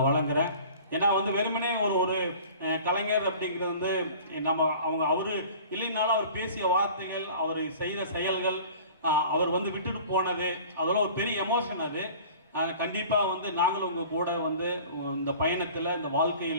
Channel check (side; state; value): both; inverted; correlation -0.44